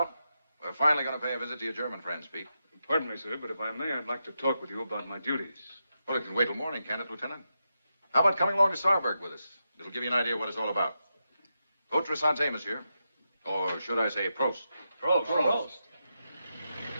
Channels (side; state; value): both; inverted; correlation -0.87